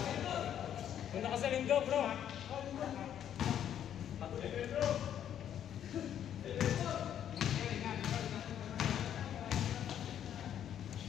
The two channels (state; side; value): quieter; right; 9.9 dB